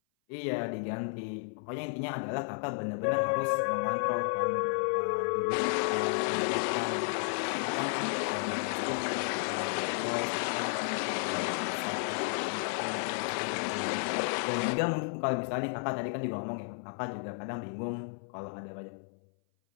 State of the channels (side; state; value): right; silent; 56 dB below the other